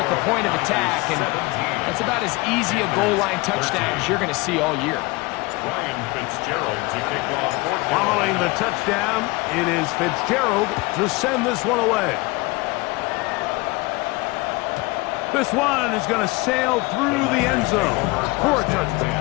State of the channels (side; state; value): right; quieter; 23.8 dB